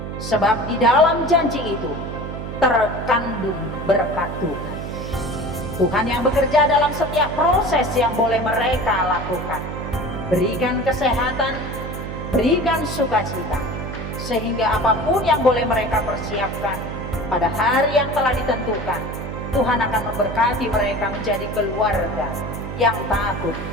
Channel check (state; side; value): noise; right; hum, 7 dB below the sound